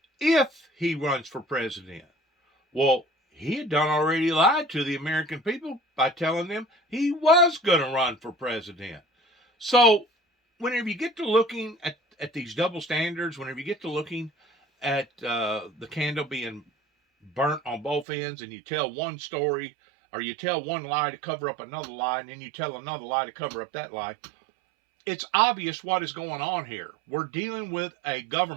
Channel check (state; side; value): drops out; left; at 18.1 s